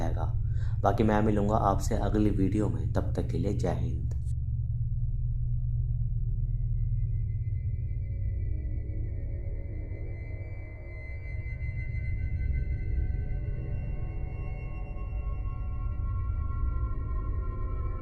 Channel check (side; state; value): both; identical; correlation 1.00